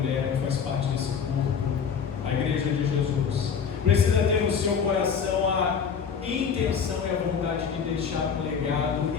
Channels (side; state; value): right; quieter; 6.7 dB